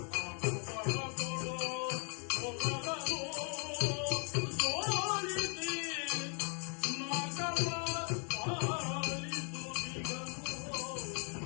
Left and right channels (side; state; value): right; quieter; 39.9 dB